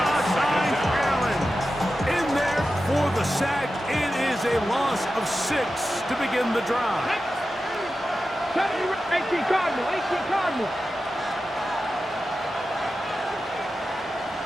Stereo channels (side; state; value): both; normal; correlation 0.92